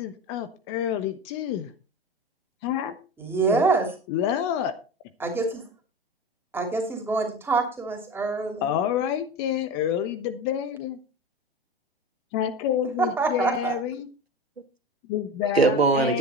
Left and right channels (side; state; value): both; normal; correlation 0.29